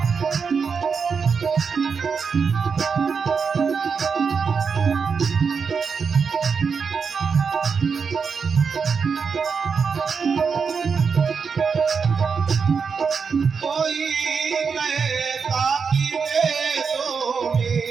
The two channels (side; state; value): left; quieter; 5.7 dB